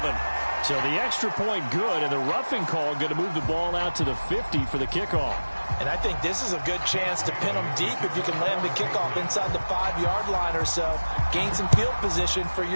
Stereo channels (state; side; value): inverted; both; correlation -1.00